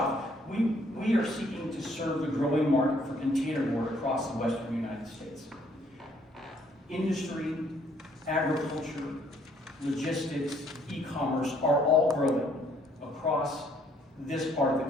we are seeking to serve the growing market for containerboard across the western United States. Industry, agriculture, logistics, e-commerce are all growing across this part of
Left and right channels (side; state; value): both; normal; correlation 0.65